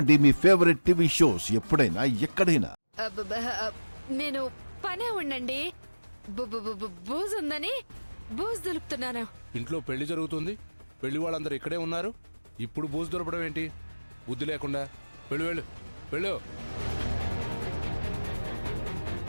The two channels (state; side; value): inverted; both; correlation -1.00